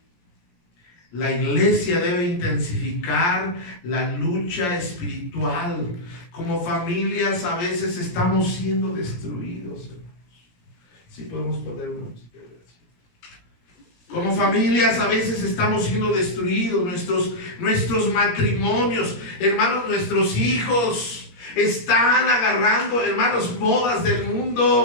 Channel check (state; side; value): late; right; 17 ms